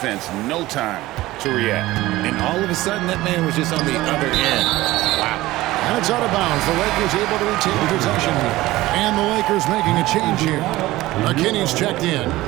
no time to react. And all of a sudden, that man was just on the other end. Wow. And it's out of bounds. The Lakers able to retain possession here. And the Lakers making a change here. McKinney's checked in.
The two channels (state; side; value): quieter; left; 17.7 dB